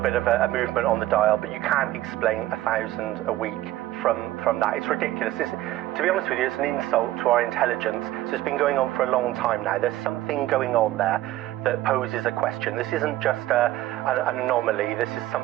of a movement on the dial, but you can't explain 1,000 a week from that. It's ridiculous. To be honest with you, it's an insult to our intelligence. So it's been going on for a long time now. There's something going on there that poses a question. This isn't just an anomaly. This is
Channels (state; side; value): quieter; left; 15.5 dB